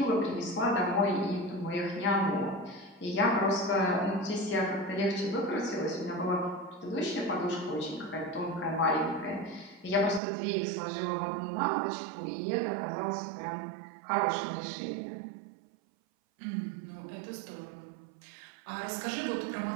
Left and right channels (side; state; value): left; drops out; at 10.2 s